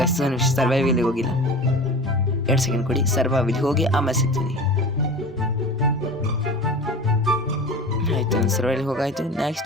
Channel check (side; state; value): both; normal; correlation 0.35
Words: ಸರ್ವೈವಲ್ಗೆ ಹೋಗಿಲ್ಲ. 2 ಸೆಕೆಂಡ್ ಕೊಡಿ. ಸರ್ವೈವಲ್ಗೆ ಹೋಗಿ ಆಮೇಲೆ ಸಿಗ್ತೀನಿ. ಆಯಿತು, ಸರ್ವೈವಲ್ಗೆ ಹೋಗಾಯಿತು.